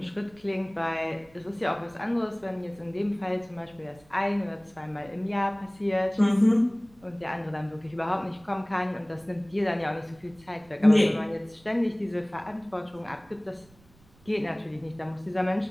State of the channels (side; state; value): right; noise; rumble, 28 dB below the sound